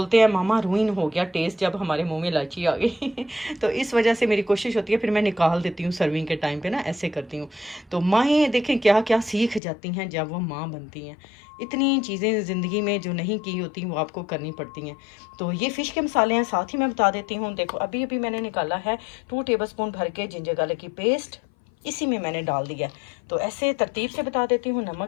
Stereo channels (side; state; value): right; drops out; at 9.6 s